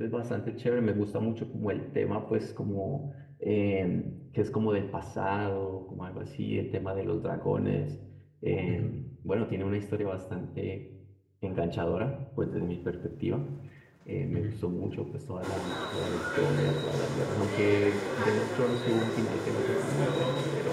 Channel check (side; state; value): both; identical; correlation 1.00